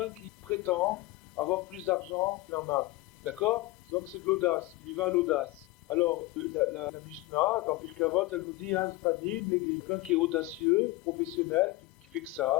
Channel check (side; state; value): right; quieter; 19.8 dB